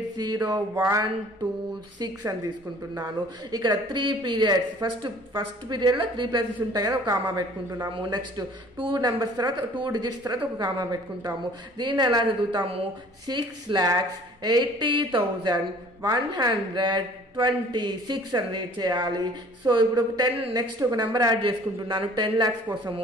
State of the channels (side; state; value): both; normal; correlation 0.52